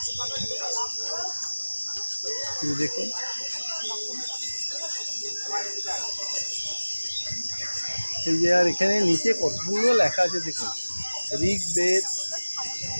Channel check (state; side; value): inverted; both; correlation -1.00